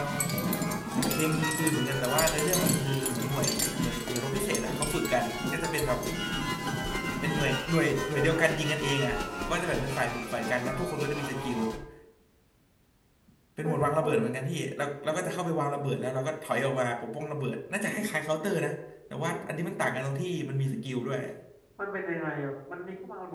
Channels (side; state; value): both; identical; correlation 1.00